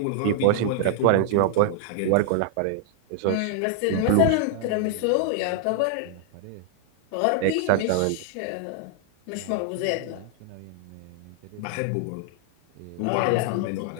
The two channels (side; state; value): both; different; correlation 0.00